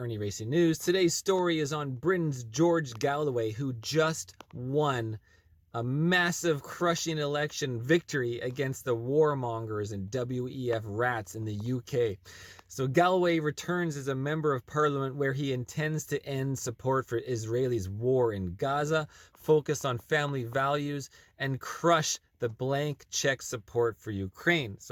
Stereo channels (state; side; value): identical; both; correlation 1.00